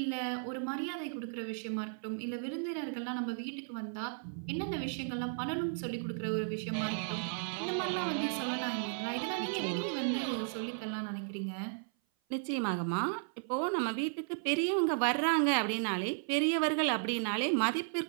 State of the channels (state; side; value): silent; left; 55 dB below the other